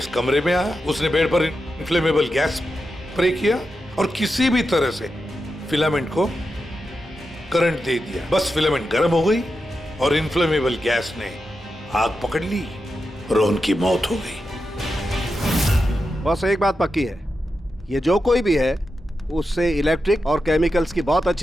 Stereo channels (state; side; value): normal; both; correlation 0.89